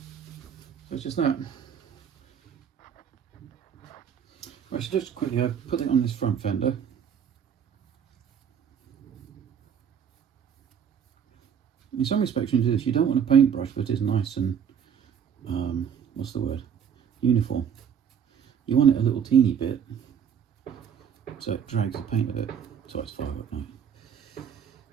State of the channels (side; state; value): left; quieter; 7.9 dB